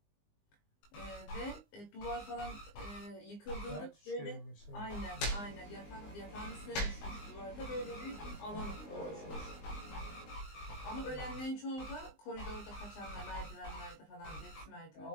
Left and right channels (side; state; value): right; late; 19 ms